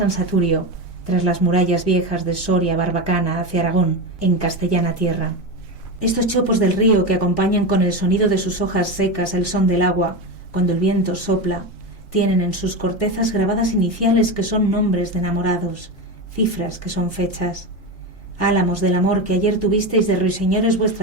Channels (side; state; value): both; normal; correlation 0.18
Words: Saturio, tras las murallas viejas de Soria, Barbacana, hacia Aragón, en castellana tierra. Estos chopos del río que acompañan con el sonido de sus hojas secas el son del agua, cuando el viento sopla, tienen en sus cortezas grabadas iniciales que son nombres de enamorados, cifras que son fechas. Álamos del amor que ayer tuvisteis de ruiseñores